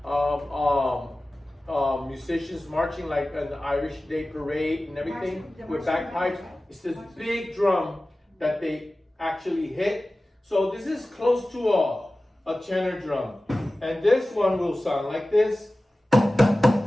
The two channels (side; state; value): both; normal; correlation 0.96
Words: musicians marching like an Irish Day parade and everything with bagpipes. It's this big drum that they actually hit. So this is close to a tenor drum. And this one will sound like this.